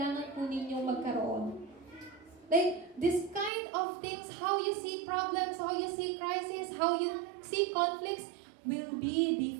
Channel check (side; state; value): left; drops out; at 3.5 s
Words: po ninyong magkaroon. Like, this kind of things, how you see problems, how you see crisis, how you see conflicts, will be